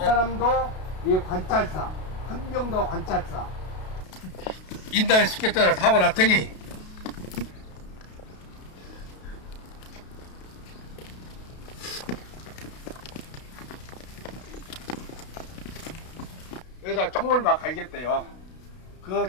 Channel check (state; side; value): late; right; 32 ms